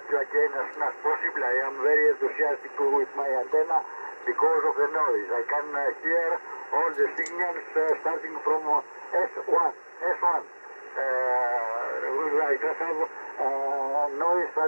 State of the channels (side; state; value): both; inverted; correlation -1.00